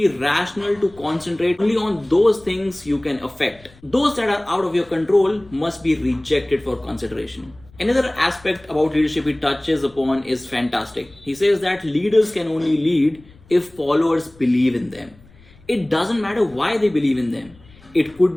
rational to concentrate only on those things you can affect. Those that are out of your control must be rejected for consideration. Another aspect about leadership he touches upon is fantastic. He says that leaders can only lead if followers believe in them. It doesn't matter why they believe in them. It could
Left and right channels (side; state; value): left; noise; rumble, 26 dB below the sound